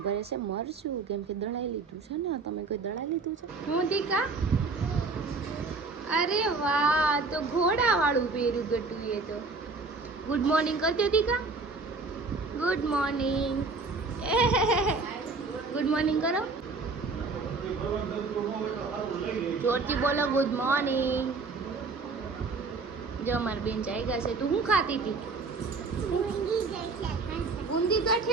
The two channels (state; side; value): quieter; left; 4.0 dB